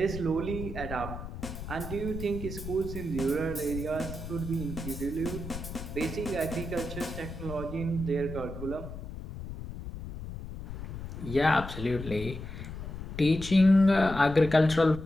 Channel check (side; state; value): left; noise; rumble, 9 dB below the sound